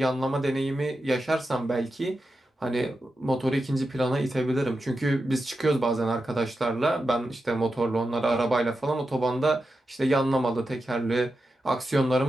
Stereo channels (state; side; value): normal; both; correlation 0.90